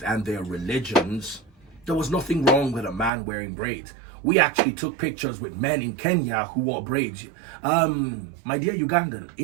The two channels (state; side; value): drops out; left; at 3.1 s